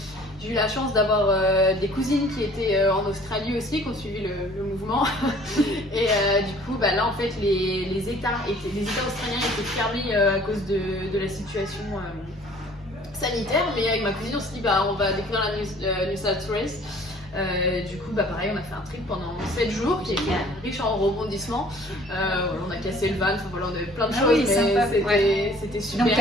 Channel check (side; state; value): both; normal; correlation 0.53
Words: J'ai eu la chance d'avoir des cousines qui étaient en Australie aussi, qui ont suivi le mouvement. Et du coup, là en fait, les États australiens étaient fermés à cause de la situation sanitaire. Mais avec ma cousine, on s'est dit, on va découvrir la New South Wales. Du coup, pareil, on a fait un trip pendant 7 jours qui était riche en rebondissements. On a cassé le van, voilà, on avait plein de choses, mais c'était super. Donc,